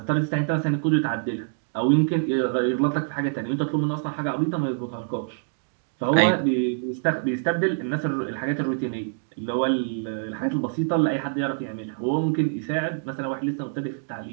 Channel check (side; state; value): left; silent; digital silence